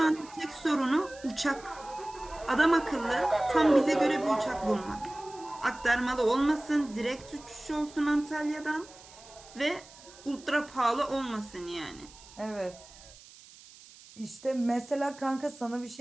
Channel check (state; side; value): noise; right; hiss, 21 dB below the sound